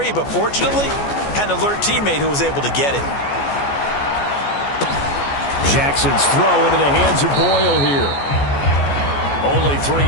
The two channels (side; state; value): right; late; 14 ms